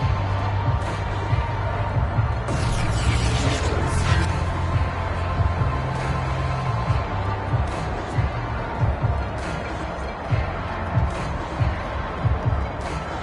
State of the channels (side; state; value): both; identical; correlation 1.00